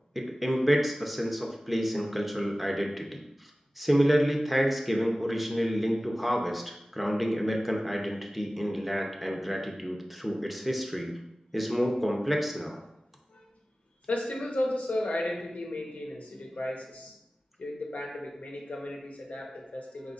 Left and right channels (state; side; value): normal; both; correlation 0.97